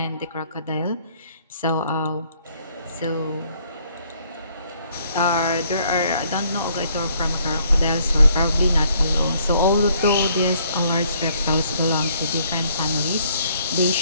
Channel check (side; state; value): both; inverted; correlation -0.66